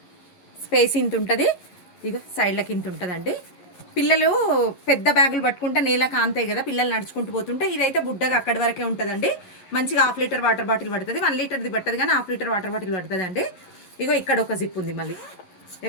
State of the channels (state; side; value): late; right; 11 ms